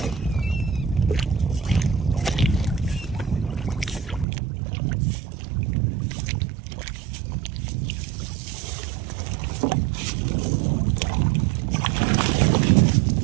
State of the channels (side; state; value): left; drops out; at 4.2 s